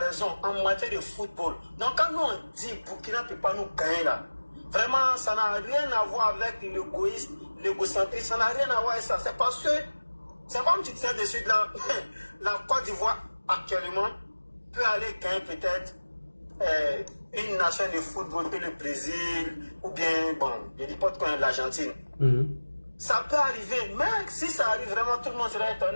en matière de football. Donc quand nous on dit Burkina ne peut pas nous gagner là, vraiment ça n'a rien à voir avec l'égoïsme, l'égocentrisme, ça n'a rien à voir avec ça. C'est parce que, c'est comme tu disais dessus, la Côte d'Ivoire actuellement peut aller gagner peut-être une nation de football que le Brésil ou bien, bon, je ne dis pas de l'Argentine. Ça peut arriver, mais si ça arrive vraiment, tout le monde sera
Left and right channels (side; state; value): both; inverted; correlation -1.00